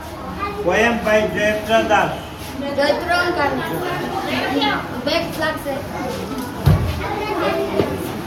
Poem by Jayatra Das.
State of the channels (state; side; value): identical; both; correlation 1.00